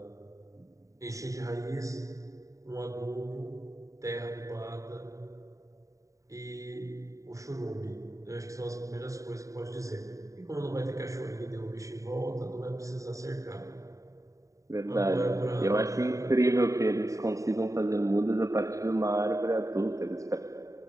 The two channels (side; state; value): left; late; 0.16 ms